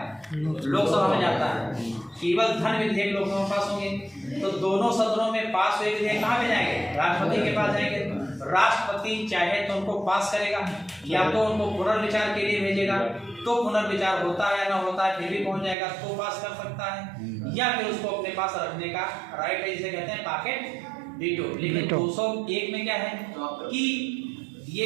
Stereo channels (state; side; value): drops out; left; at 15.8 s